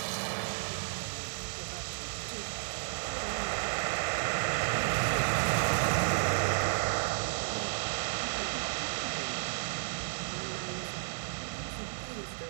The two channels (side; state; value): left; silent; digital silence